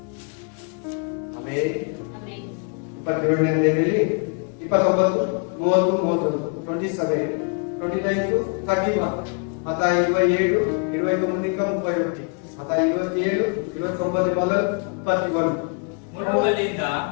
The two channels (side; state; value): right; quieter; 39.1 dB